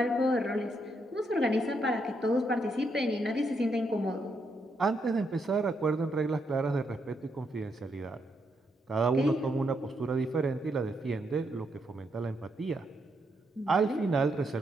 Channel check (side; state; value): both; normal; correlation 0.78